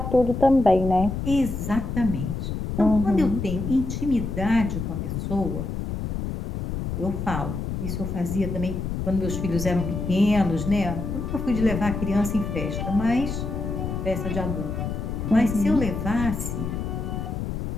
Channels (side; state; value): left; noise; rumble, 4 dB below the sound